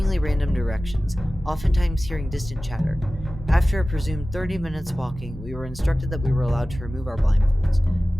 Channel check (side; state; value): both; normal; correlation 0.96